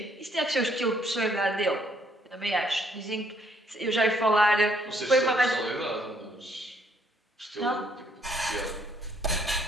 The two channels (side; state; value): both; normal; correlation 0.68